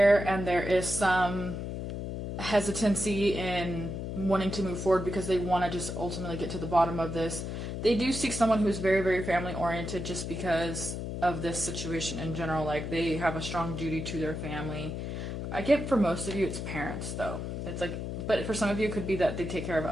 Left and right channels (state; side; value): noise; left; hum, 5 dB below the sound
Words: and there is some hesitancy in wanting to move forward because they want to just ultimately get to the bottom of this. They do seek someone who's very, very family oriented just because of this situation in general. Like, they have a strong duty to their family. I get for most of you it's parents though. It's like, but for some of you it could be that they take care of